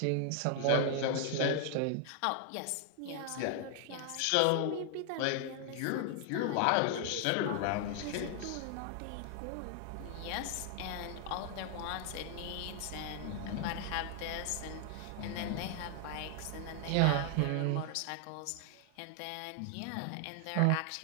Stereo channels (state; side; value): different; both; correlation 0.00